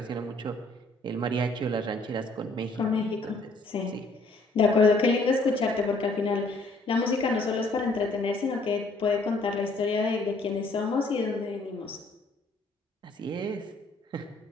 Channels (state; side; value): quieter; right; 3.0 dB